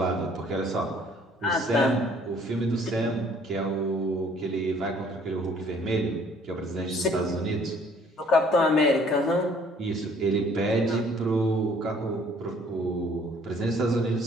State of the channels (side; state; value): both; normal; correlation 0.59